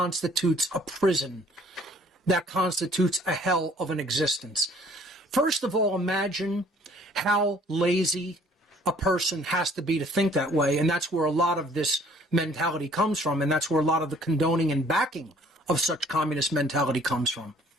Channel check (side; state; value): both; normal; correlation 0.57